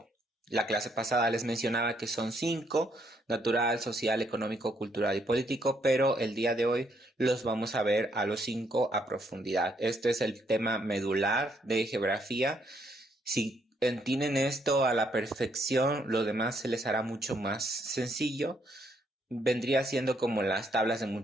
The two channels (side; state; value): both; normal; correlation 0.72